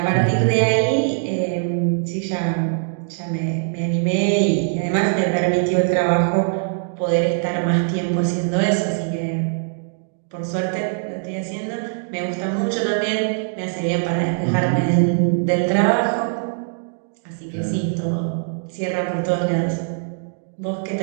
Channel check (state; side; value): silent; left; digital silence